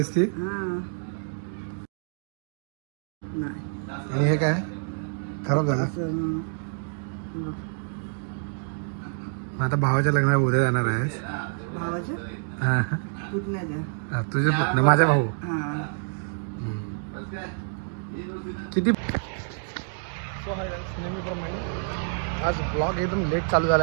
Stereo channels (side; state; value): left; silent; 60 dB below the other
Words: ती. आणि हे काय खराब झालं. आता भावाच्या लग्नाला उद्या जाणार आहेस. तुझे पुतणे माझा भाऊ किती. नेहमीप्रमाणे आज ब्लॉग एकदम लेट चालू झाला